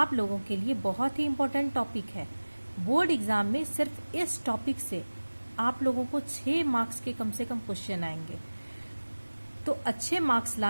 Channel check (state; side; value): inverted; both; correlation -1.00